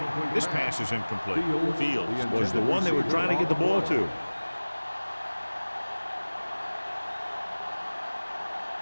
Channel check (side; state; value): both; inverted; correlation -1.00